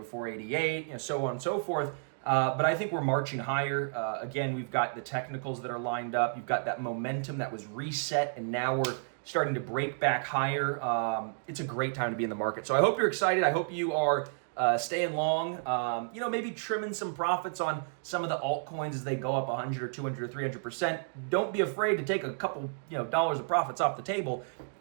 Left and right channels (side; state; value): left; silent; digital silence